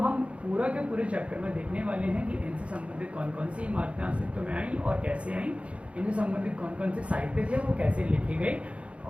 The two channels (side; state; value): left; late; 0.062 ms